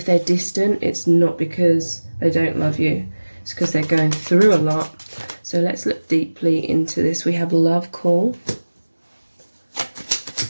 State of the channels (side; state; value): both; inverted; correlation -1.00